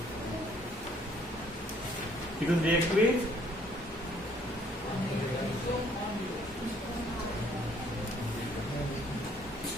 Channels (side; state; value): both; normal; correlation 0.63